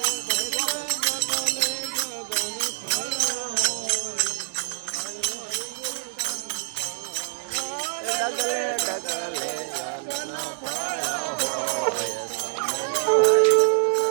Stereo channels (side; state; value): left; silent; digital silence